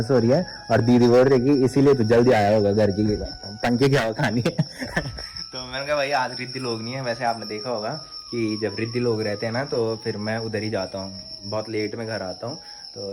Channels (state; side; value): identical; both; correlation 1.00